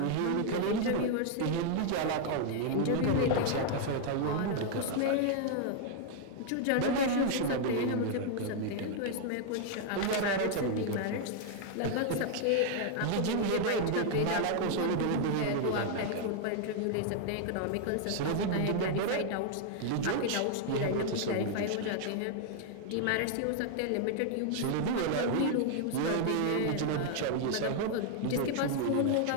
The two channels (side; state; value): both; different; correlation 0.00